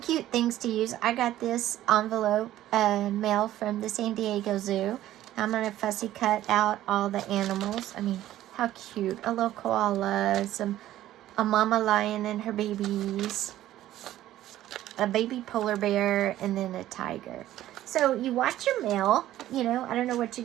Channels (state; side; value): quieter; left; 13.7 dB